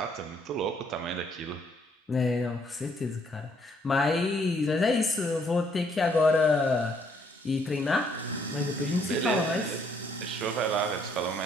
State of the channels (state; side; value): normal; both; correlation 0.68